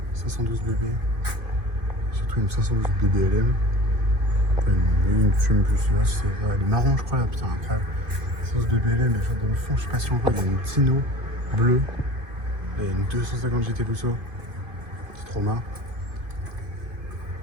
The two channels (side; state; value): left; late; 2.5 ms